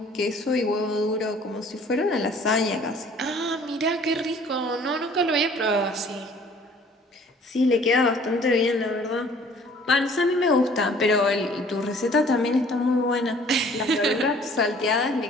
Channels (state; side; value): normal; both; correlation 0.54